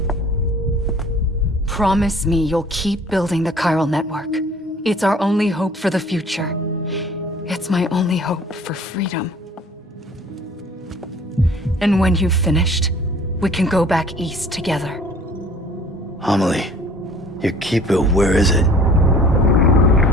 Promise me you'll keep building the Chiral Network. It's our only hope for the future. It's my only hope for freedom. And when you've finished, we can go back east together. Amelie, your Kipu, where is it?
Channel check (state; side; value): normal; both; correlation 0.51